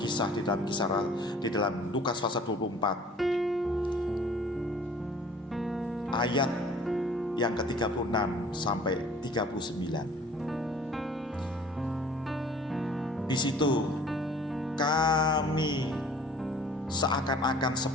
di dalam Lukas pasal 24 ayat yang ke-36 sampai 39. Di situ kami seakan-akan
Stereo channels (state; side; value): normal; both; correlation 0.50